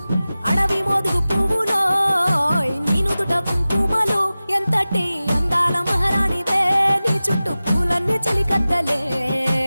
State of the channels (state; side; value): inverted; both; correlation -0.96